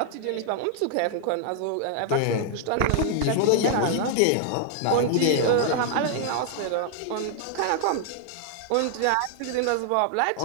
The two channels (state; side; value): different; both; correlation 0.00